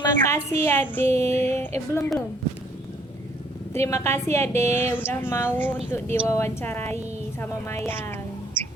kasih Ade. Belum. Terima kasih Ade udah mau untuk diwawancarai sama Mayang.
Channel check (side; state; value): both; normal; correlation 0.63